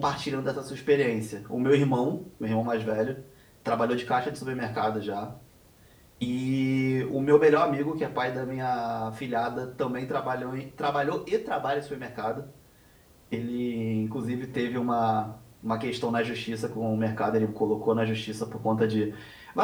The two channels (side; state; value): both; identical; correlation 1.00